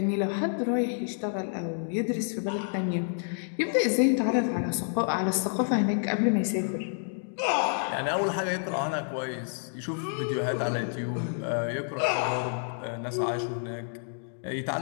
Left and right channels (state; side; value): silent; right; digital silence